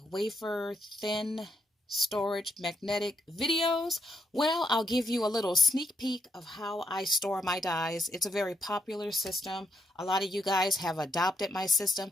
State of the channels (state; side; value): normal; both; correlation 0.78